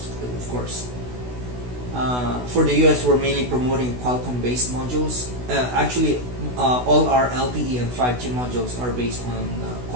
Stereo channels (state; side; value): late; left; 16 ms